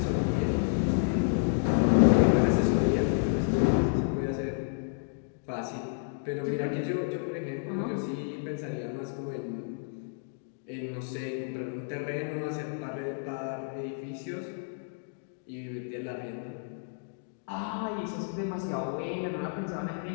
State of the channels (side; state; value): right; silent; digital silence